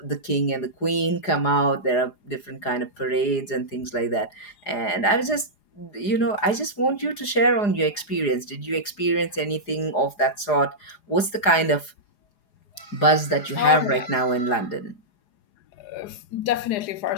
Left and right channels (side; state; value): right; late; 4.9 ms